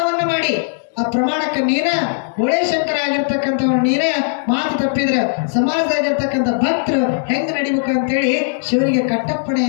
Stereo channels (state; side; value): silent; right; digital silence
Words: ಮಾಡಿ. ಆ ಪ್ರಮಾಣಕ್ಕೆ ನೀನ ಶಂಕರ ಆಗಿರ್ತಕ್ಕಂಥವ್ರು ನೀನೇ ಮಾತು ತಪ್ಪಿದ್ರೆ ಸಮಾಜದಾಗಿರ್ತಕ್ಕಂಥ ಭಕ್ತರು ಹೆಂಗ್ ನಡಿಬೇಕು ಅಂತೇಳಿ ಶಿವನಿಗೆ